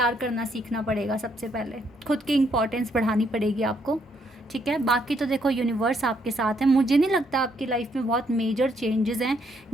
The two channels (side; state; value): both; normal; correlation 0.72